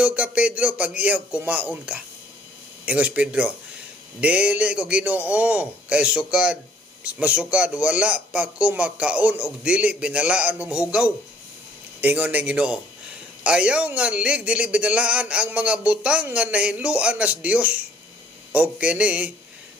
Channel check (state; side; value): normal; both; correlation 0.60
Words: ka Pedro pag iyaw kumaon ka. Ingos Pedro, dili ko Ginoo kay masukad wala pa ko makaon og dili binalaan hugaw. Ingon ng Ginoo, ayaw nga dili binalaan ang mga butang nga nahinluan nas Dios. Og kini